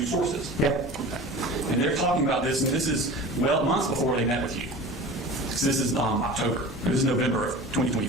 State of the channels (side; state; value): both; normal; correlation 0.37